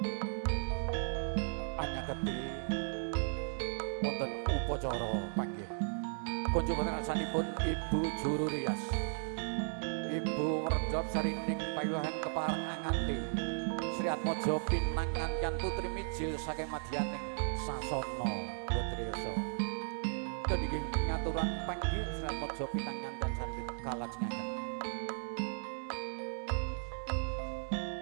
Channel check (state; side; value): silent; left; 54 dB below the other